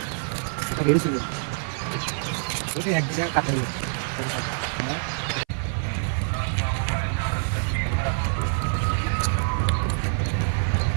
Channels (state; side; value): silent; left; 56 dB below the other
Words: এটা বেরিয়েছিল, ওটা এক জায়গায় কাটাই।